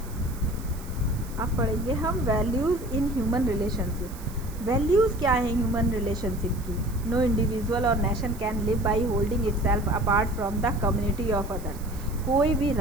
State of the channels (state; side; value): noise; right; hiss, 19 dB below the sound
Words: अब पढ़ेंगे हम values in human relationship. Values क्या हैं ह्यूमन रिलेशनशिप की? नो इंडिविजुअल और nation can live by holding itself apart from the community of others. कोई भी